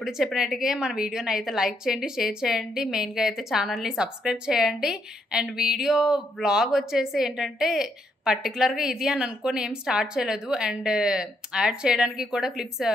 చెప్పినట్టుగా మన వీడియోని అయితే లైక్ చేయండి, షేర్ చేయండి, మెయిన్గా అయితే ఛానల్ని సబ్స్క్రైబ్ చేయండి. అండ్ వ్లాగ్ వచ్చేసి ఏంటంటే పర్టికులర్గా ఇది అని అనుకొని ఏం స్టార్ట్ చేయలేదు. అండ్ యాడ్ చేయడానికి కూడా క్లిప్స్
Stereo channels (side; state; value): both; normal; correlation 0.76